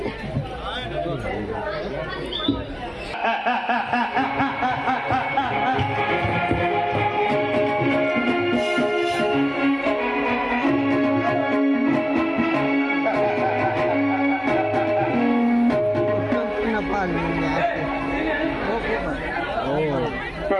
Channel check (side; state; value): both; identical; correlation 1.00